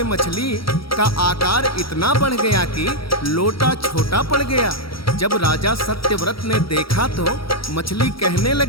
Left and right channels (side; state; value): right; late; 0.75 ms